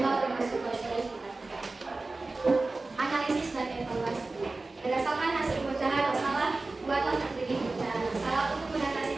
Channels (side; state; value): left; quieter; 3.4 dB